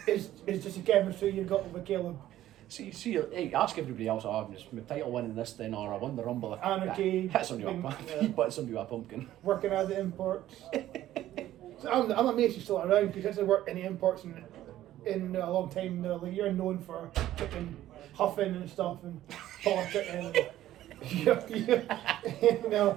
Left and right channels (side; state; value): left; quieter; 13.5 dB